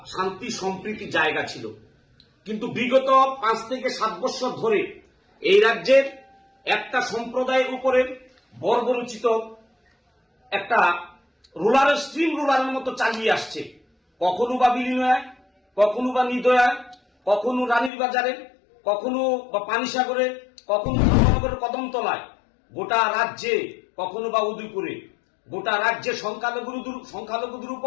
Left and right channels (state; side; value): drops out; right; at 17.9 s